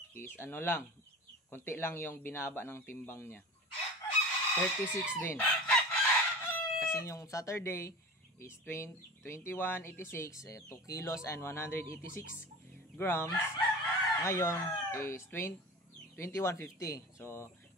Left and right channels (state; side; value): normal; both; correlation 0.34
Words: is ano lang, konti lang yung binaba ng timbang niya. 36 din. Kasi yung Saturday is 2186, 2 kilos and 186 grams. Ngayon is 2150. So